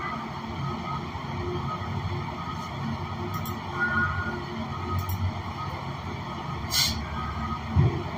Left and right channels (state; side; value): identical; both; correlation 1.00